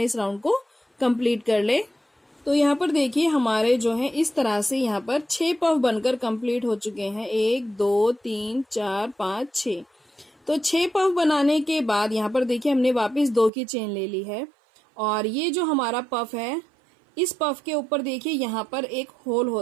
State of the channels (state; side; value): drops out; left; at 13.5 s